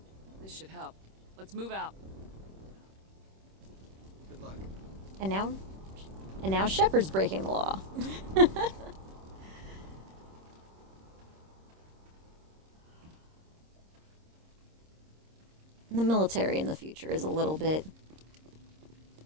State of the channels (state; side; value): late; left; 26 ms